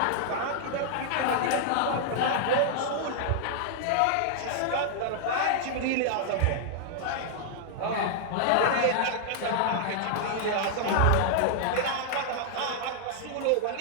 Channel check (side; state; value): both; different; correlation -0.01